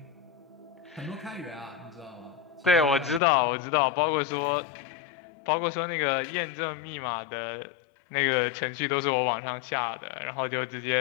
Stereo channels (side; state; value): right; drops out; at 3.2 s